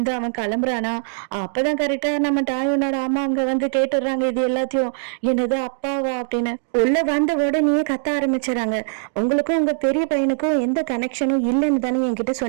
அவன் கிளம்புறானா. அப்பதான் கரெக்டா நம்ம டாயோனோட அம்மா அங்க கேட்டுடுறாங்க இது எல்லாத்தையும். என்னது அப்பாவா அப்படின்னு உள்ள வந்த உடனே கத்த ஆரம்பிச்சுறாங்க. உங்களுக்கும் உங்க பெரிய பையனுக்கும் எந்த கனெக்ஷனும் இல்லைன்னு தானே என்கிட்ட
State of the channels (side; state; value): left; silent; digital silence